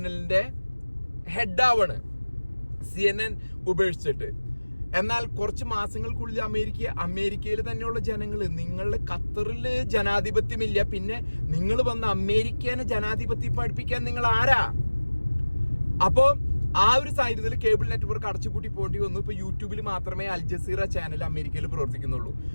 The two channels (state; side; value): inverted; both; correlation -1.00